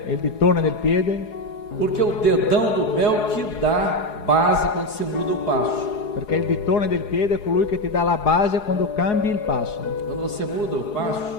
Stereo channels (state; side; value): late; right; 4.8 ms